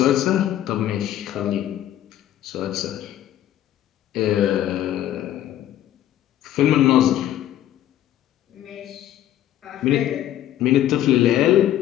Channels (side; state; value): right; quieter; 12.2 dB